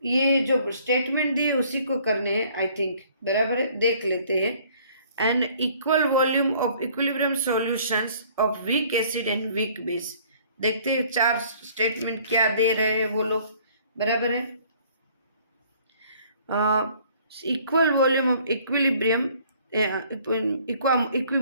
ये जो स्टेटमेंट दिए उसी को करने हैं आई थिंक, बराबर है, देख लेते हैं। An equal volume of equilibrium solutions of weak acid and weak base, देखते हैं चार स्टेटमेंट क्या दे रहे हैं वो लोग, बराबर है। Equal volume of equilibrium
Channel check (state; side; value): inverted; both; correlation -0.57